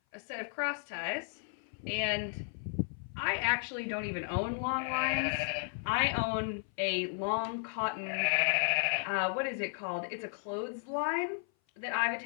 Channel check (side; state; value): right; silent; 55 dB below the other